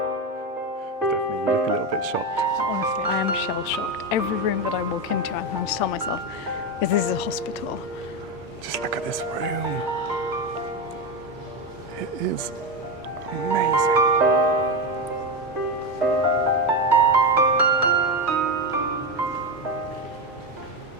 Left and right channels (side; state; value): both; normal; correlation 0.13